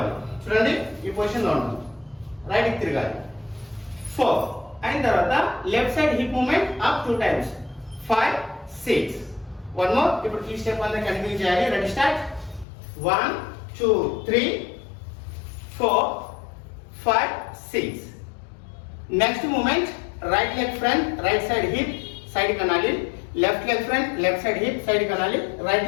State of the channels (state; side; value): drops out; right; at 12.7 s